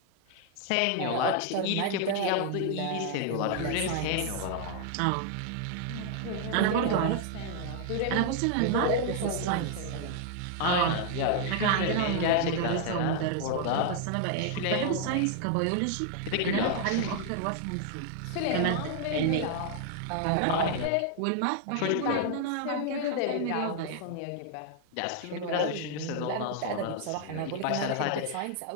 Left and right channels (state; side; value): different; both; correlation 0.00